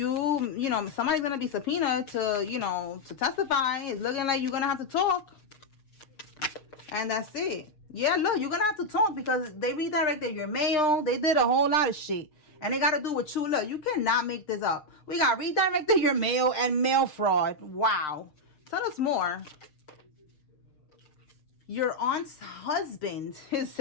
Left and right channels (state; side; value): late; right; 6.6 ms